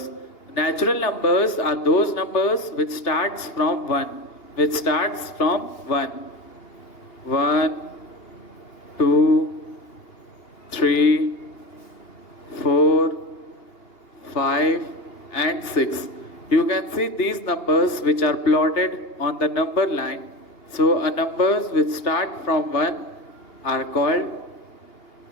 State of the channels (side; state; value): right; late; 2.8 ms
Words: Natural numbers are those numbers which starts from 1. Which starts from 1. 1, 2, 3, 4, 5 and 6. You can see these numbers which are plotted on the number line. So numbers which start from 1 are called